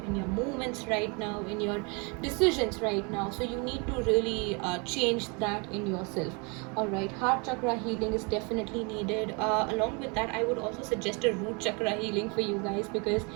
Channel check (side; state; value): left; quieter; 32.1 dB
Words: in your movements right now, in your decisions right now. So you need to really change that in yourself. All right, heart chakra healing is definitely needed. Along with that, I would also suggest a root chakra healing for you guys, because